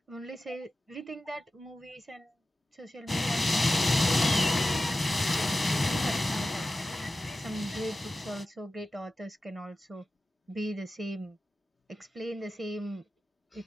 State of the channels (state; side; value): normal; both; correlation 0.94